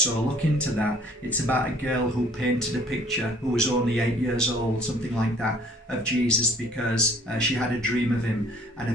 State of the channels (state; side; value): normal; both; correlation 0.56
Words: look into that. It's about a girl who painted a picture who was only 8 years old, something like that, of Jesus because she had a dream of him. And